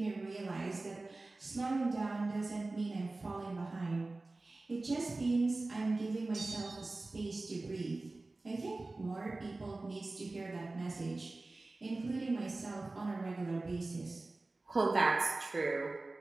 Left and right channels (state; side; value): quieter; left; 3.2 dB